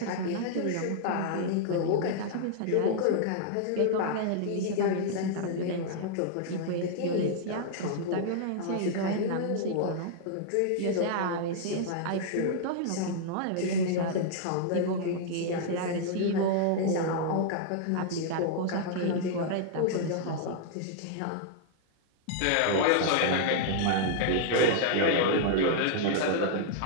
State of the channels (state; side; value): different; both; correlation -0.01